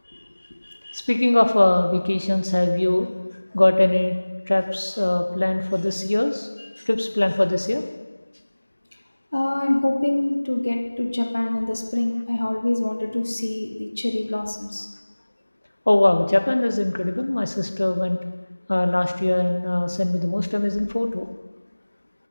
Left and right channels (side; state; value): both; inverted; correlation -1.00